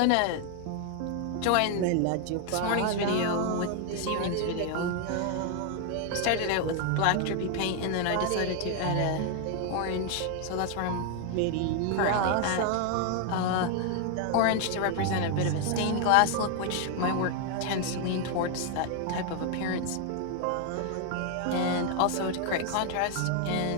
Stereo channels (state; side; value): different; both; correlation 0.00